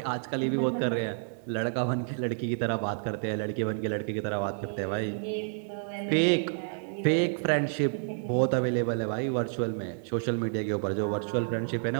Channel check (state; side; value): silent; left; digital silence